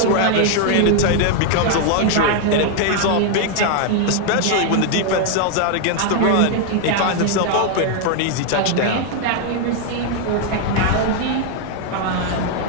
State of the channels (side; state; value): both; different; correlation 0.00